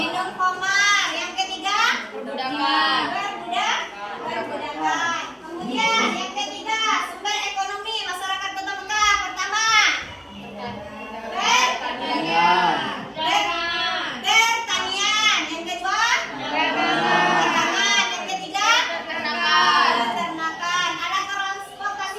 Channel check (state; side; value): identical; both; correlation 1.00